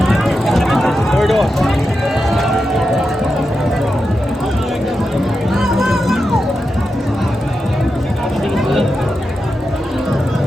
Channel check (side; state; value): both; normal; correlation 0.89